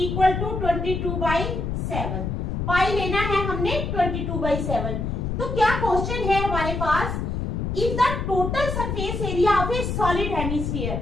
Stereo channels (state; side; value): noise; left; rumble, 2 dB below the sound